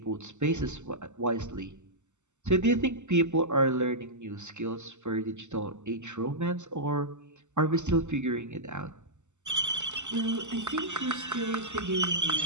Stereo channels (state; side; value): late; left; 0.84 ms